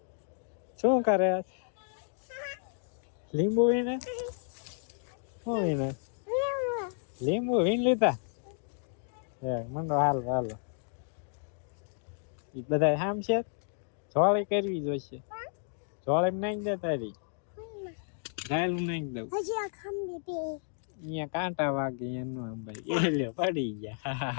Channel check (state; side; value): silent; right; digital silence